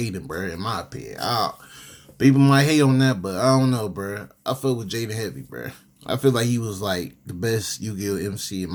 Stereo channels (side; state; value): both; identical; correlation 1.00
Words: bro. In my opinion, people might hate on that, but I don't know, bro. I feel with Jaden heavy, bro. I feel like he was like the best Yu-Gi-Oh MC in